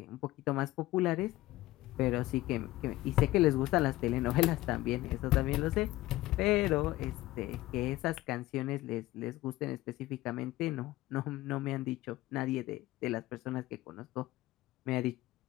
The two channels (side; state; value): right; quieter; 17.3 dB